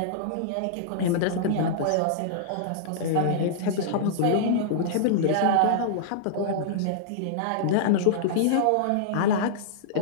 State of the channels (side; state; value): both; different; correlation -0.02